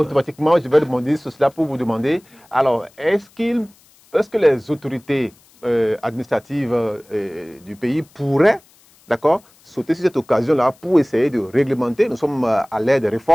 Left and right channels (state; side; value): noise; left; hiss, 30 dB below the sound